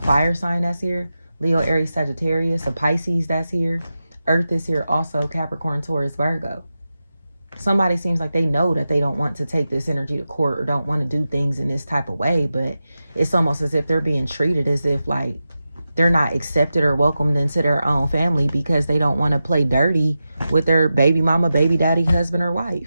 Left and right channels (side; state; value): both; inverted; correlation -0.91